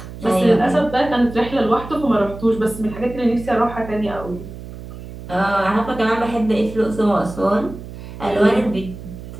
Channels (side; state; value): right; noise; hum, 13 dB below the sound